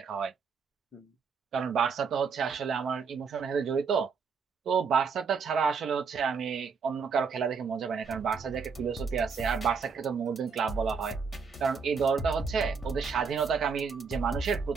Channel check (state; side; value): quieter; left; 5.6 dB